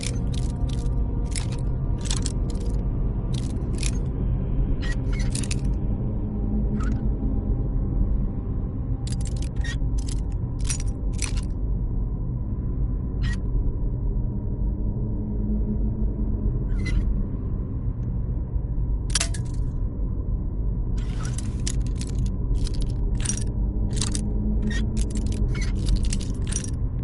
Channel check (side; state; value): both; identical; correlation 1.00